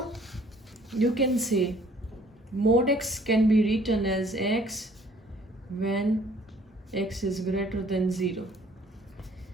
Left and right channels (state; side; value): normal; both; correlation 0.58